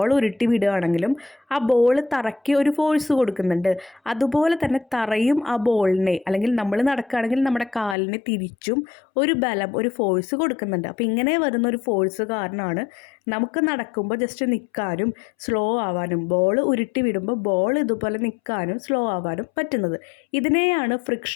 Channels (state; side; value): drops out; right; at 8.0 s